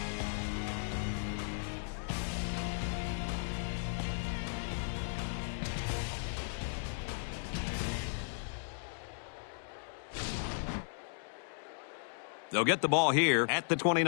They'll get the ball here at the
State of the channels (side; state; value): right; silent; digital silence